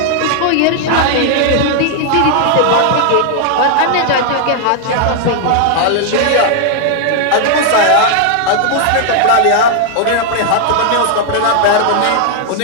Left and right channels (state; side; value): different; both; correlation 0.00